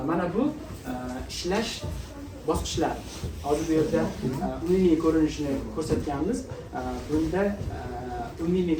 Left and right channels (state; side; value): identical; both; correlation 1.00